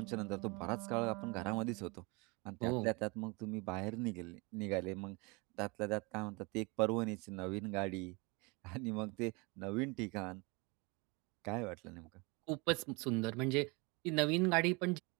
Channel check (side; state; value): left; quieter; 28.2 dB